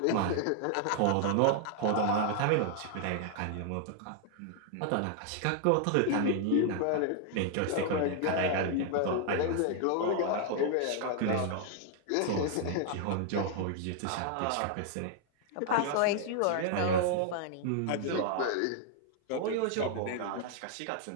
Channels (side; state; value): both; different; correlation 0.00